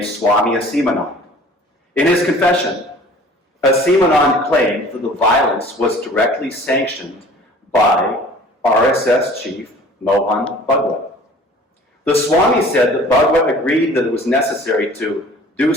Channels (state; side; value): normal; both; correlation 0.48